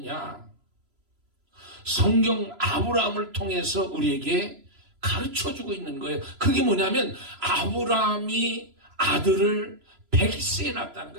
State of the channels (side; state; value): left; late; 3.0 ms